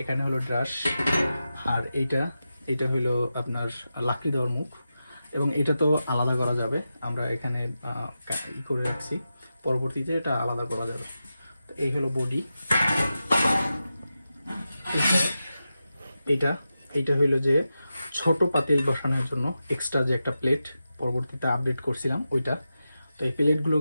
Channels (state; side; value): inverted; both; correlation -0.91